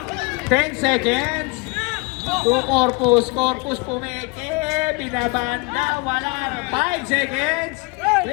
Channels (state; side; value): quieter; right; 28.1 dB